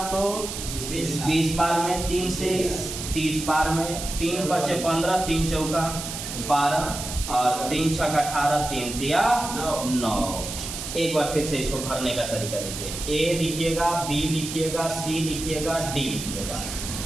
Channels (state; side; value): noise; right; hiss, 7 dB below the sound